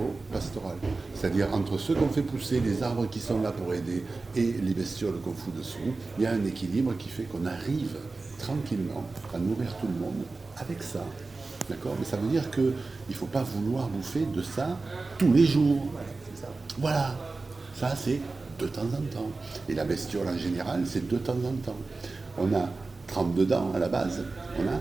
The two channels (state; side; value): quieter; left; 3.6 dB